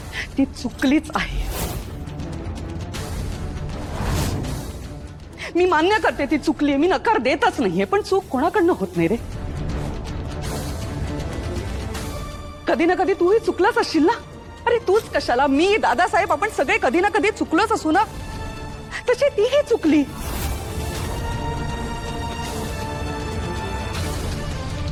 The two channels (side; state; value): both; identical; correlation 1.00